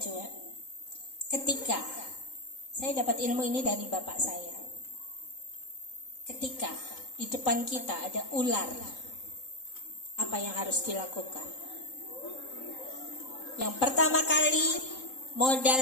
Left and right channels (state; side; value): late; right; 3.8 ms